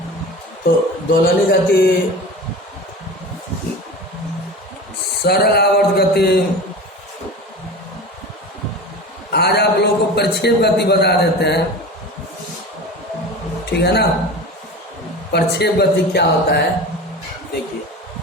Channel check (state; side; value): normal; both; correlation 0.33